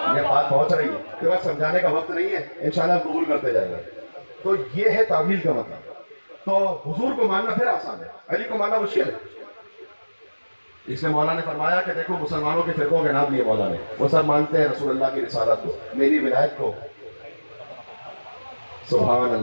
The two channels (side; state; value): both; inverted; correlation -1.00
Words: یہ بات پہنچ رہی ہے کہ بس سمجھانے کا وقت نہیں ہے، انشاءاللہ قبول کرتے جائیں گے، تو یہ ہے تعویل کا مطلب۔ تو حضور کو ماننا پھر آسان ہے، علی کو ماننا مشکل ہے، اس لیے مولا نے فرمایا کہ دیکھو مسلمانوں کے فرقوں کے نام لیے مولا نے، وہ سب مانتے ہیں رسول اللہ کی رسالت کو، میری ولایت کو، سبحان